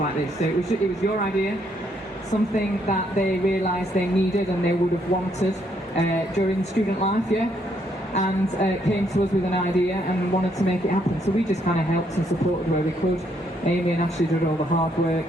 this. So it was your idea, something that they realised they needed and they would have wanted during student life, and came to us with an idea and wanted to make it happen. So we just kind of helped and supported where we could. Amy and Ashley did all the hard work,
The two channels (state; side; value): normal; both; correlation 0.72